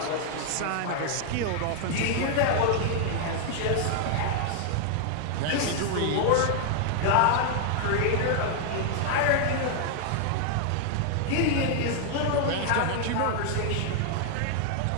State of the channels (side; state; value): both; different; correlation 0.00